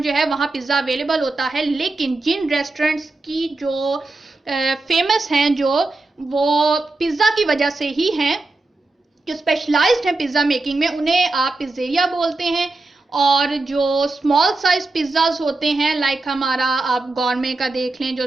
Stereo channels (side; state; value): left; quieter; 3.2 dB